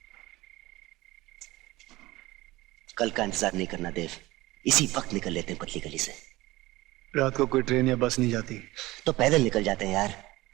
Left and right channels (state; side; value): quieter; left; 19.3 dB